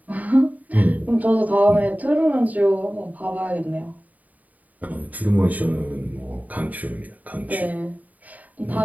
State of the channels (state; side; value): late; left; 0.074 ms